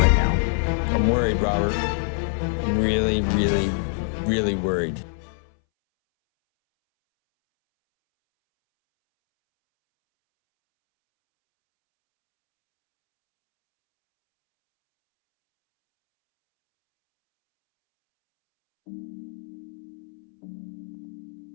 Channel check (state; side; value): silent; right; 61 dB below the other